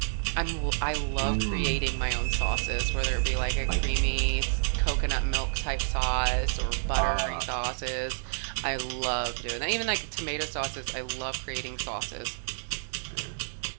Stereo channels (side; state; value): left; silent; digital silence